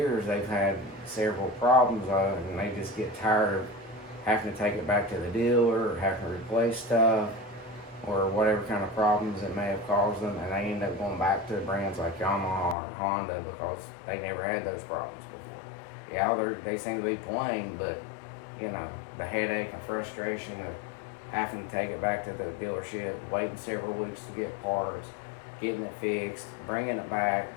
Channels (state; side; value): drops out; right; at 12.8 s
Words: they've had several problems and they just get tired of having to take it back to the dealer or having to replace stuff or whatever kind of problems it may have caused them, and they end up going back to brands like Yamaha or Honda because they never had those problems before. Yeah, they seem to be playing, but the headache and frustration of having to take it back to the dealership, waiting several weeks to get parts, getting it fixed, bringing it back,